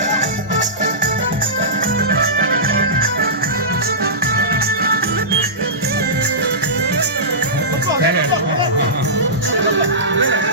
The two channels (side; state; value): both; normal; correlation -0.19